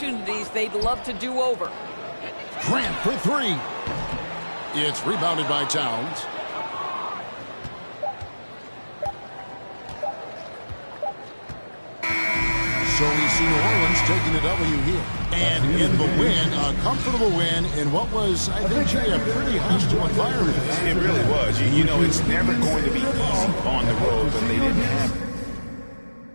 they'd love to do over. Grant for 3. It's rebounded by Towns. So we see New Orleans taking the W here. And in the win, a comfortable win in what was, I think, Jay, a pretty hostile environment. It really was. You know, it's never going to be easy on the road, but they didn't have it.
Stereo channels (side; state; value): both; inverted; correlation -1.00